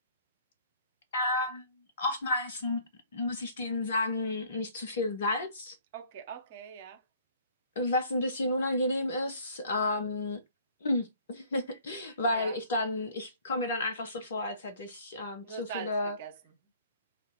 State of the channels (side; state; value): both; inverted; correlation -0.56